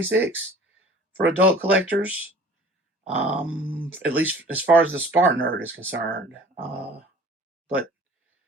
for adult collectors, at least as far as the SpartanNerd is concerned. But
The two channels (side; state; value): both; normal; correlation 0.47